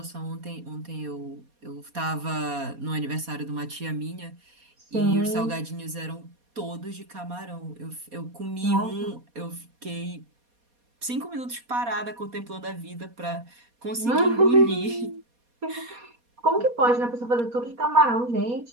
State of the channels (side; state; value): left; late; 4.2 ms